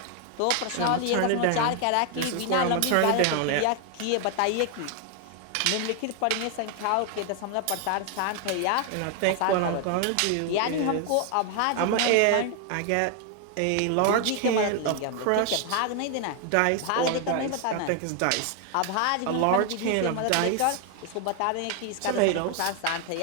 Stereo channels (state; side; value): different; both; correlation 0.01